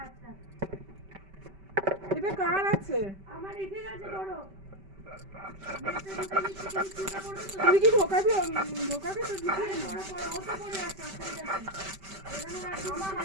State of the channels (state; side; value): late; left; 5.2 ms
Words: আচ্ছা এটা কার আছে? আমার এসে গেছে বড়। তুই কি ঢোকাবি? ঢোকাবি তো দিদি। বড় বড় ওটা পরে আছে অসুবিধা নেই। এখানে রাখি আমার